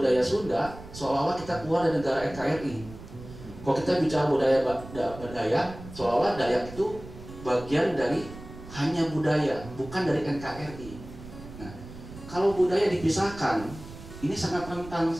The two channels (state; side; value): noise; right; rumble, 15 dB below the sound